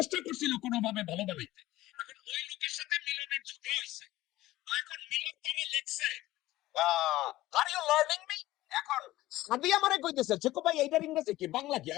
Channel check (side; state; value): right; quieter; 16.6 dB